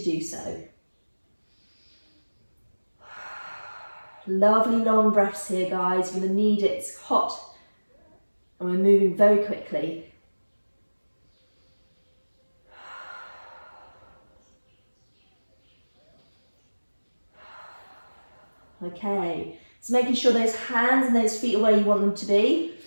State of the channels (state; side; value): inverted; both; correlation -1.00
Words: do so. Lovely long breaths here, guys. You're going to need it. It's hot. And we're moving very quickly. Okay, so making sure those hands and those feet are where you want them to be.